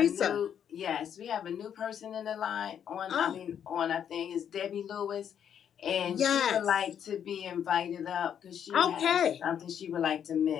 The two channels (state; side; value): quieter; right; 8.8 dB